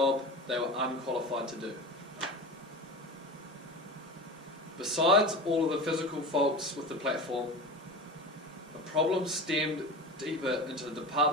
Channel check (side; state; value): both; normal; correlation 0.30